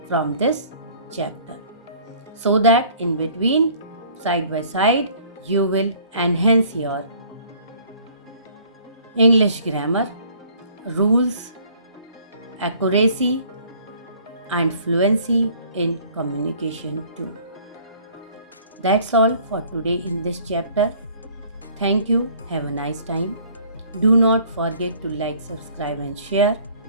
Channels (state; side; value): inverted; both; correlation -0.55